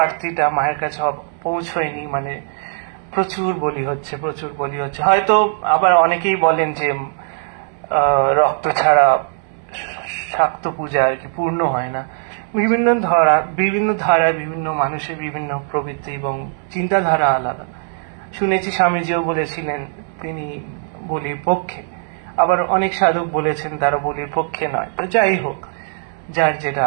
আরতিটা মায়ের কাছে পৌঁছয়নি, মানে প্রচুর বলি হচ্ছে। হয়তো আবার অনেকেই বলেন যে রক্ত ছাড়া শাক্ত পূজা আর কি পূর্ণ হয় না। বিভিন্ন ধারা, বিভিন্ন মানুষের বিভিন্ন প্রবৃত্তি এবং চিন্তাধারা আলাদা। শুনেছি স্বামীজিও বলেছিলেন তিনি বলির পক্ষে, আবার অনেক সাধক বলেছেন তারা বলির পক্ষে নয়। তো যাই হোক, যার যেটা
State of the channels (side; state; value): left; silent; 61 dB below the other